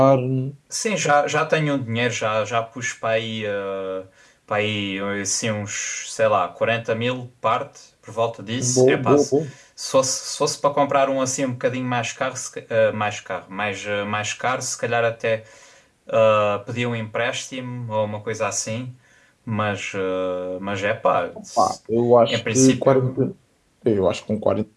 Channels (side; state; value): both; identical; correlation 1.00